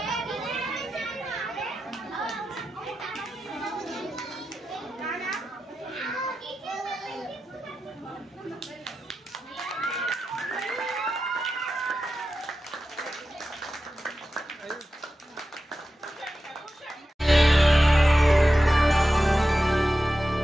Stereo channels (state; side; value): normal; both; correlation 0.92